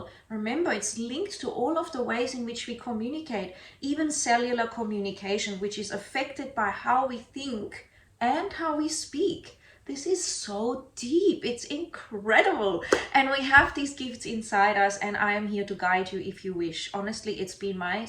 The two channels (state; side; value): identical; both; correlation 1.00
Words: Remember, it's linked to all of the ways in which we communicate, even cellular communication, which is affected by how we think and how we speak. This is so deep. It's incredible. And we have these gifts inside us, and I am here to guide you if you wish. Honestly, it's been my